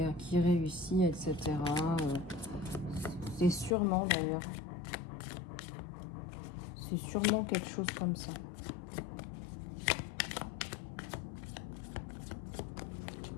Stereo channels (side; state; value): right; drops out; at 3.8 s